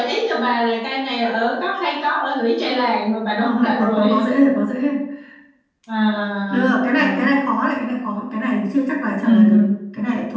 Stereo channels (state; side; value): identical; both; correlation 1.00